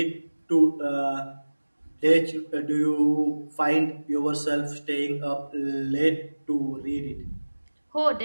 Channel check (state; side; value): inverted; both; correlation -1.00